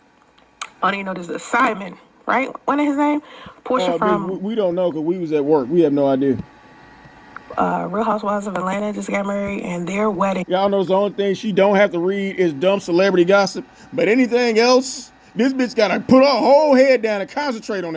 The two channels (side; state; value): both; identical; correlation 1.00